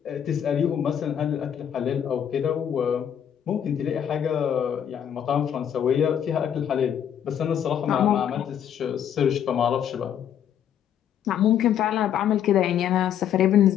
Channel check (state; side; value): quieter; right; 9.3 dB